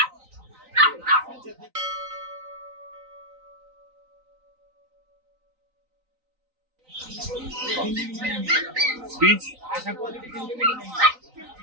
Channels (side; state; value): left; late; 3.9 ms